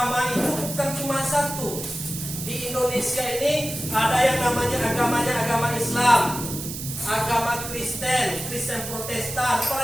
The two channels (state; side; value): noise; right; hiss, 8 dB below the sound